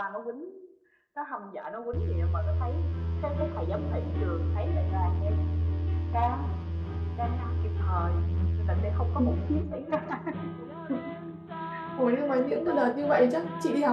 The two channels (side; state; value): both; identical; correlation 1.00